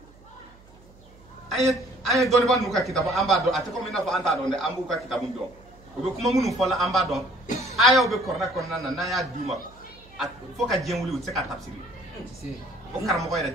an ye dɔnnibaa ninnu ka kitabu an b'a dɔn a tɛ komi i n'a fɔ an t'a dɔn dɛ an b'u ka kitabu dɔn u bɛ kuma minnu fɔ la an b'a dɔn ayaw bɛ Kuran kɔnɔna na n'an y'a d'u ma fo ka diɲɛ wuli u tɛ se ka tafsir o karamɔgɔ yɛrɛ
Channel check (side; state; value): right; noise; hum, 25 dB below the sound